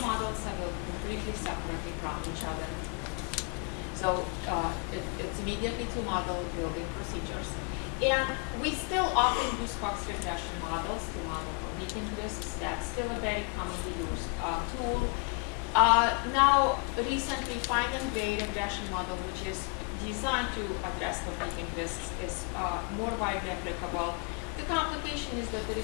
models are built completely separately from each other. So it's immediately to model building procedures. And we still often use Cox regression models to model competing risks. That's still a very commonly used tool. Now, recently, find and grade regression model, which is designed to address competing risks, is more widely applicable. The complication is that there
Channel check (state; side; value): quieter; right; 33.6 dB